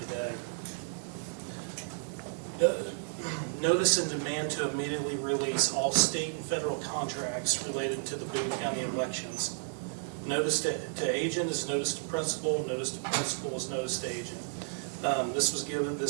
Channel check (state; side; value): silent; left; digital silence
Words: today. Notice and demand to immediately release all state and federal contracts related to the Boone County elections. Notice to agent is notice to principal. Notice to principal is notice to agent.